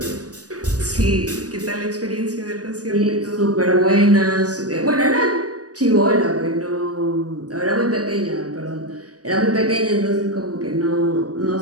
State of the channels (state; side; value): late; left; 0.68 ms